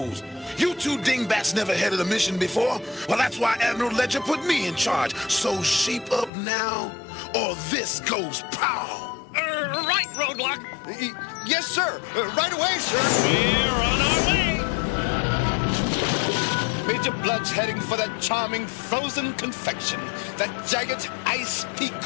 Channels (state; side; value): drops out; right; at 6.3 s